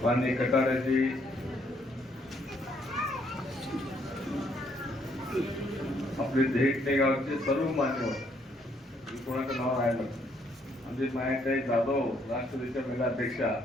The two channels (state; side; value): normal; both; correlation 0.70